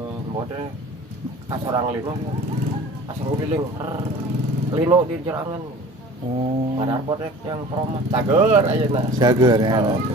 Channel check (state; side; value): normal; both; correlation 0.43